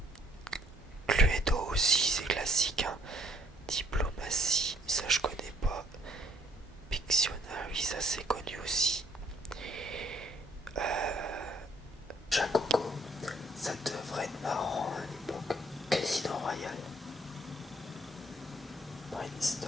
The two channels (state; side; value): normal; both; correlation 0.63